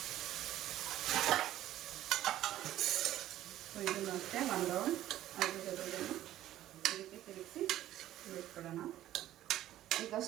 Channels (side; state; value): left; quieter; 13.4 dB